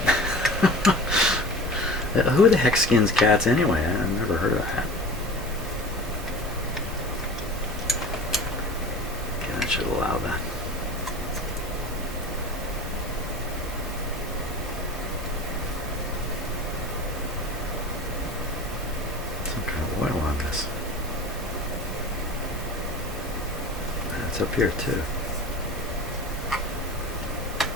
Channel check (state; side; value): normal; both; correlation 0.37